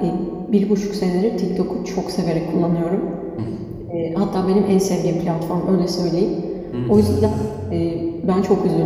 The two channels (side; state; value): both; identical; correlation 1.00